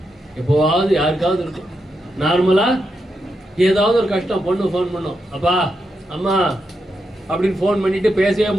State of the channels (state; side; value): normal; both; correlation 0.85